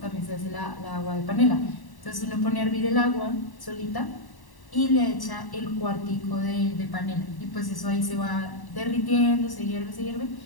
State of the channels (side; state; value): right; late; 1.1 ms